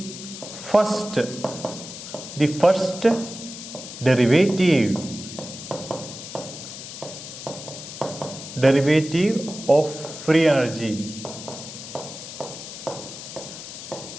first derivative of free energy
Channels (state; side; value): noise; left; hiss, 11 dB below the sound